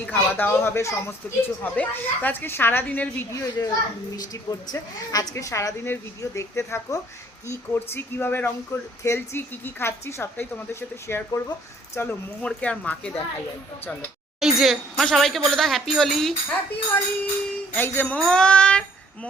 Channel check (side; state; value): both; normal; correlation 0.60